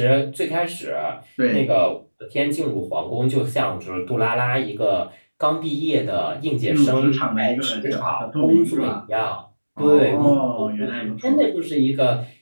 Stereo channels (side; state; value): both; inverted; correlation -1.00